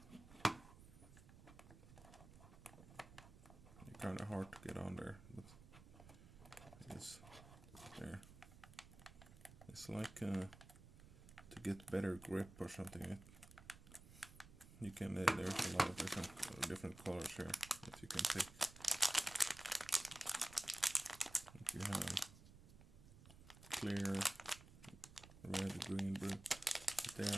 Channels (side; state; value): right; noise; rumble, 18 dB below the sound